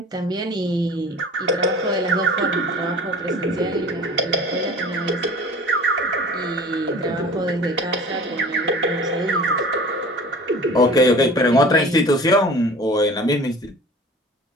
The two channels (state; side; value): normal; both; correlation 0.41